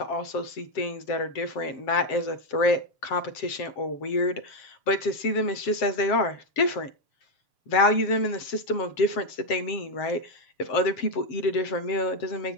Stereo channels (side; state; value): right; late; 7.6 ms